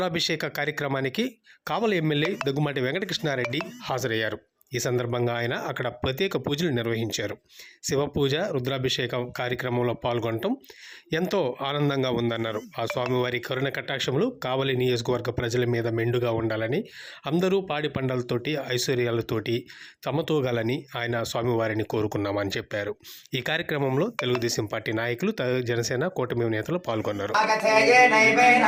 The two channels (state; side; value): identical; both; correlation 1.00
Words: కార్యక్రమానికి కావలి ఎమ్మెల్యే దగ్గుమాటి వెంకటకృష్ణారెడ్డి హాజరయ్యారు. ఈ సందర్భంగా ఆయన అక్కడ ప్రత్యేక పూజలు నిర్వహించారు. శివపూజ రుద్రాభిషేక కార్యక్రమంలో పాల్గొనడం ఎంతో ఆనందంగా ఉందన్నారు. ఆ స్వామివారి కరుణ కటాక్షములు కావలి నియోజకవర్గ ప్రజల మీద మెండుగా ఉండాలని, అందరూ పాడి పంటలతోటి ఐశ్వర్యాలతోటి తమతూగాలని ఆయన స్వామివారిని కోరుకున్నామని చెప్పారు. ఈ కార్యక్రమంలో తెలుగుదేశం పార్టీ నాయకులు, జనసేన కూటమి నేతలు పాల్గొన్నారు.